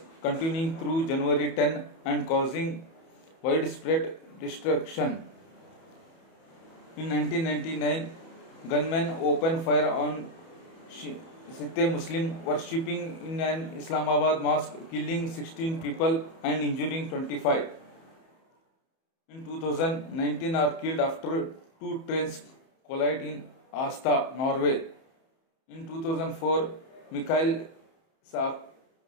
continuing through January 10 and causing widespread destruction. In 1999, gunmen opened fire on Sikh Muslim worshipping in an Islamabad mosque, killing 16 people and injuring 25. In 2019 are killed after 2 trains collide in Asta, Norway. In 2004, Mikhail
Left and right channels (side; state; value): right; late; 30 ms